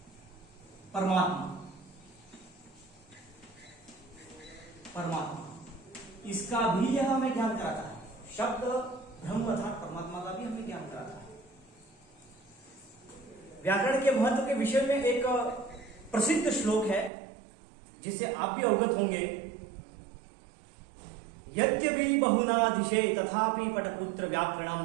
परमात्मा, इसका भी यह हमें ज्ञान कराता है। शब्द ब्रह्म अर्थात परमात्मा का भी हमें ज्ञान कराता है। व्याकरण के महत्व के विषय में एक प्रसिद्ध श्लोक है जिसे आप भी अवगत होंगे। यद्यपि बहुनादिशे तथापि पटपुत्र व्याकरणम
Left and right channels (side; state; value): left; drops out; at 17.1 s